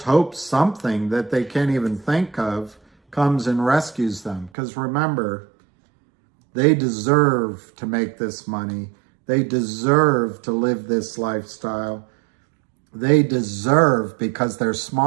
hope something that they can't even think of comes and rescues them? Because remember, they deserve to make this money. They deserve to live this lifestyle. They deserve, because they're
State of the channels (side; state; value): left; drops out; at 4.5 s